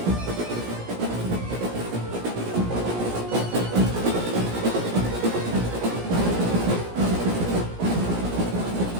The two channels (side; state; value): left; late; 17 ms